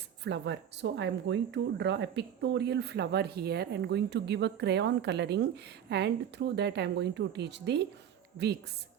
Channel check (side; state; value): left; quieter; 9.4 dB